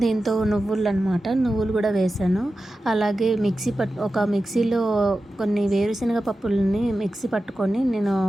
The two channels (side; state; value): both; normal; correlation 0.93